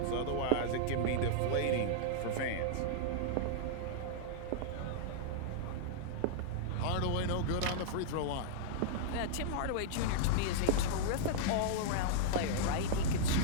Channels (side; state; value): both; different; correlation -0.02